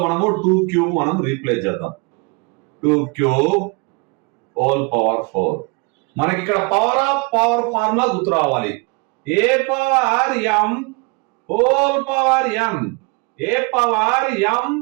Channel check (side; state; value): left; quieter; 30.8 dB